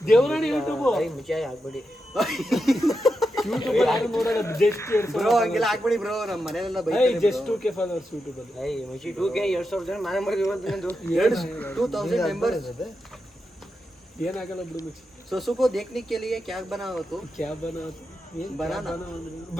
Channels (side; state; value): both; normal; correlation 0.87